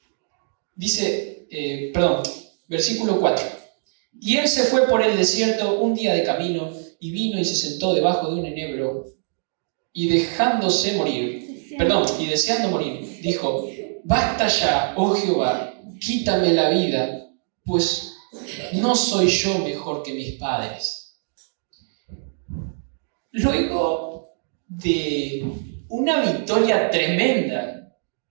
dice, versículo 4. Y él se fue por el desierto un día de camino y vino y se sentó debajo de un enebro y deseando morir, dijo: basta ya, oh Jehová, quítame la vida, pues no soy yo mejor que mis padres. Luego de una victoria tremenda,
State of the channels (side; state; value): left; silent; digital silence